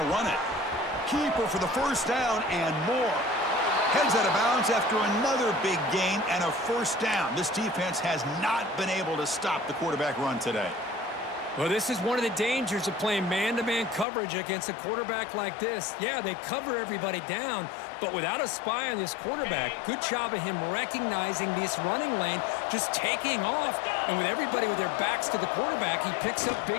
to run it. Keeper for the first down and more. Heads out of bounds after another big gain and a first down. This defense has not been able to stop the quarterback run today. Well, this is one of the dangers of playing man-to-man coverage against a quarterback like this. Yeah, they cover everybody down, but without a spy on this quarterback, good job of him recognizing this running lane, just taking off, and with everybody with their backs to the quarterback, he picks up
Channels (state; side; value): drops out; right; at 14.1 s